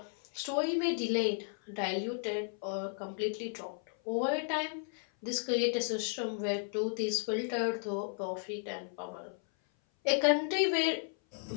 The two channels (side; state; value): right; silent; 55 dB below the other